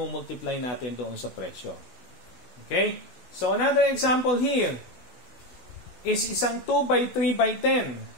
natin doon sa presyo. Okay? So, another example here is isang 2 by 3 by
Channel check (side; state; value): right; late; 16 ms